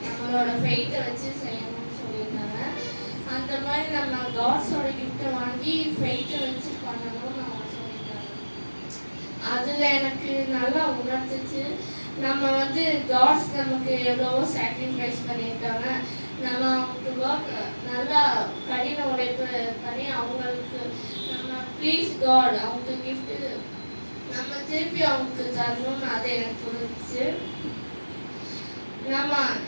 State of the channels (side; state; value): both; inverted; correlation -1.00